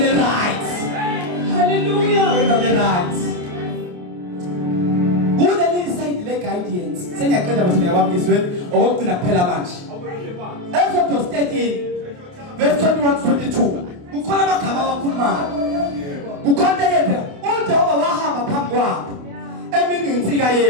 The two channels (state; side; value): late; left; 28 ms